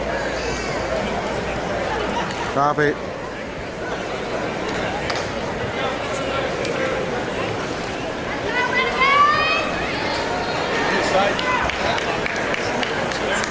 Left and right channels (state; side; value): identical; both; correlation 1.00